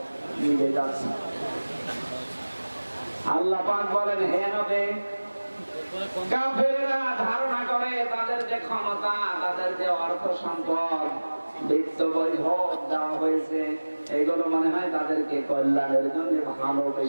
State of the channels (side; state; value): both; inverted; correlation -1.00